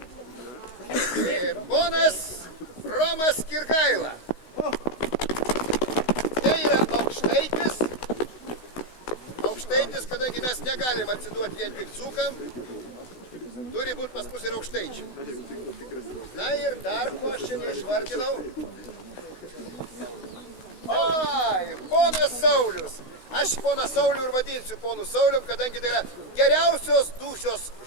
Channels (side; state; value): right; late; 16 ms